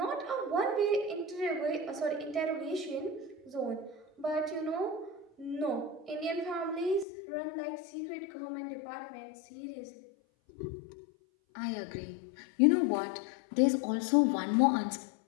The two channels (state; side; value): drops out; right; at 7.1 s